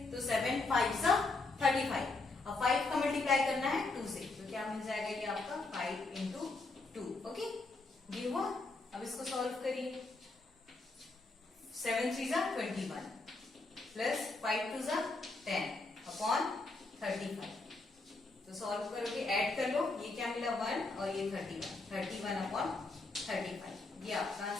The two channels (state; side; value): quieter; right; 3.4 dB